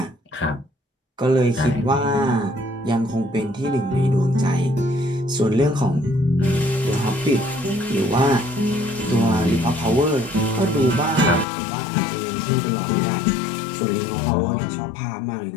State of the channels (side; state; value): right; drops out; at 11.5 s